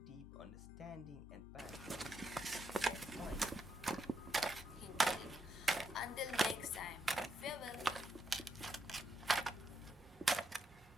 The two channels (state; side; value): normal; both; correlation 0.81